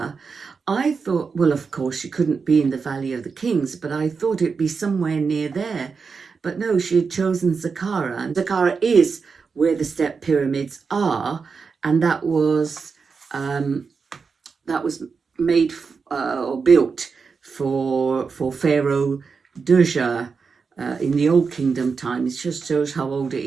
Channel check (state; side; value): quieter; left; 5.2 dB